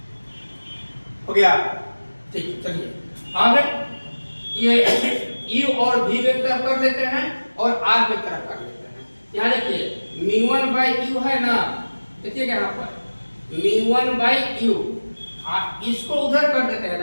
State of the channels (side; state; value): both; inverted; correlation -1.00